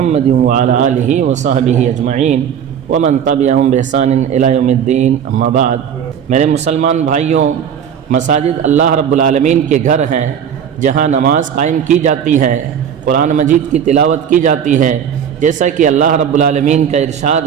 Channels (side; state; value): left; quieter; 8.4 dB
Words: وعلی آلہ وصحبہ اجمعین ومن تبعہم بإحسان الی یوم الدین اما بعد۔ میرے مسلمان بھائیوں، مساجد اللہ رب العالمین کے گھر ہیں جہاں نماز قائم کی جاتی ہے، قرآن مجید کی تلاوت کی جاتی ہے، جیسا کہ اللہ رب العالمین کا